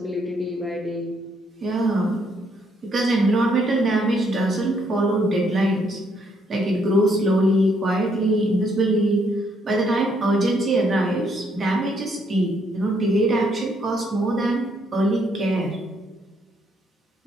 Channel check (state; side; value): normal; both; correlation 0.71